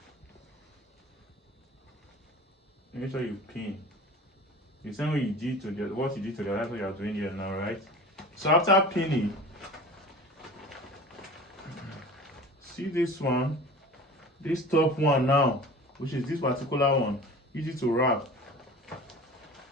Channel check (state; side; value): normal; both; correlation 0.39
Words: Make sure you pin. The same way you did to the what you did to the that's what you are doing here now, right? So after pinning, see this one, this top one now, which is this particular one, easy to wrap.